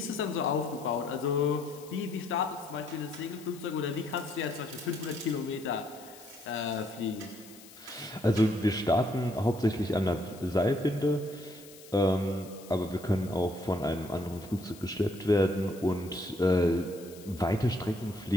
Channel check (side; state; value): left; noise; hiss, 20 dB below the sound